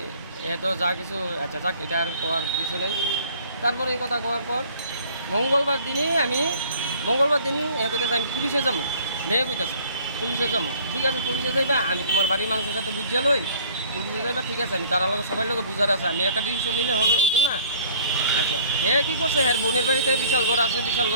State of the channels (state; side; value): inverted; both; correlation -0.53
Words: এত যা কিছু, আচ্ছা যাক, এটা আর করার কিছু নেই। তারপরে এই কথা করার পর মঙ্গলবার দিন কইতেছে আমি পুলিশে যাবো। মেয়ে কইতেছে পুলিশে যাবো। ঠিক আছে পুলিশে যাইবা, আমি তোমার বাড়ির মানুষের সাথে বুঝিয়া লই, পুলিশে যাইবা। ঠিক আছে আমি তার লোক সবাই লোক বুঝার আছে, আমি একটা ডিসিশন নিলে হতো না। আচ্ছা হ্যাঁ কী করছে, হ্যাঁ বোনের বাড়িতে বিশাল ঘর আছে, বিশাল